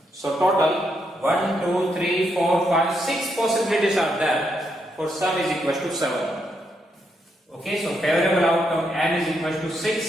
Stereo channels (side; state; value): both; normal; correlation 0.79